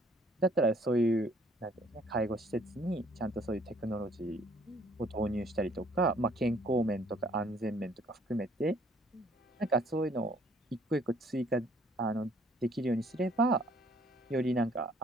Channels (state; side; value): normal; both; correlation 0.61